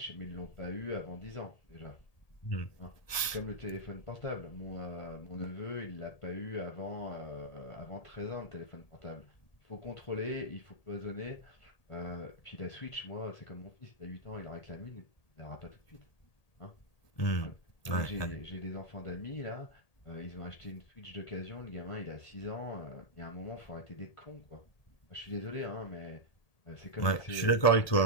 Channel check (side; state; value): right; late; 1.8 ms